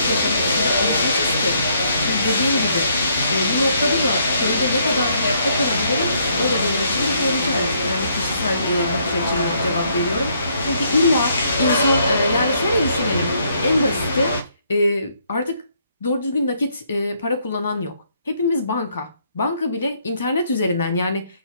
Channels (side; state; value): both; inverted; correlation -0.70